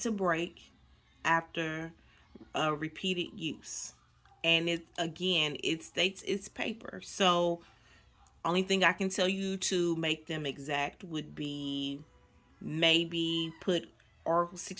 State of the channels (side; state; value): both; identical; correlation 1.00